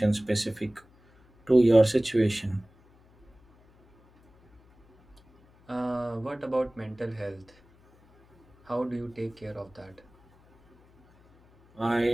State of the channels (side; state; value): left; noise; hum, 30 dB below the sound